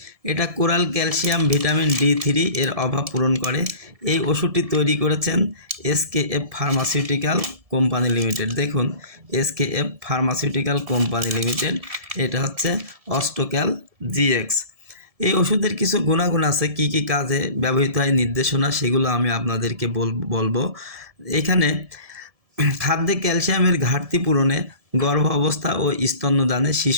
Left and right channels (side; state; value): left; late; 1.7 ms